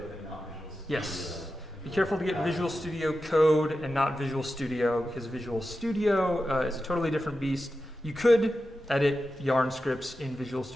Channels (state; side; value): normal; both; correlation 0.91